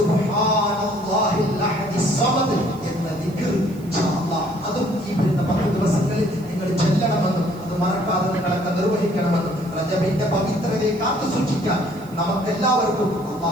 അഹദിസ് സമദ് എന്ന ദിക്ർ ഇൻഷാഅല്ലാഹ് അതും ഈ വരുന്ന 10 ദിവസങ്ങളിൽ നിങ്ങൾ ചൊല്ലണമെന്നും അത് മറക്കാതെ നിങ്ങളൊക്കെ നിർവഹിക്കണമെന്നും റജബിന്റെ പവിത്രതയെ കാത്തു സൂക്ഷിക്കാൻ നമുക്കെല്ലാവർക്കും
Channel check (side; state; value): right; noise; hiss, 25 dB below the sound